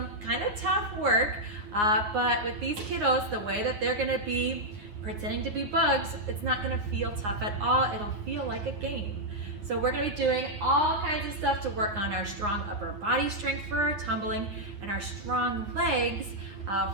kind of tough work, but with these kiddos, the way that they're going to be pretending to be bugs, it's not going to feel tough at all. It'll feel like a game. So we're going to be doing all kinds of stuff to work on our strong upper body strength for our tumbling and our strong legs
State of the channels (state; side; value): late; left; 9.6 ms